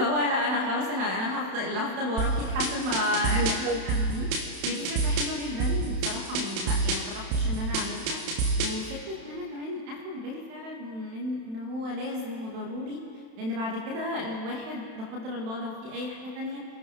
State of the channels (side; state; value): left; late; 31 ms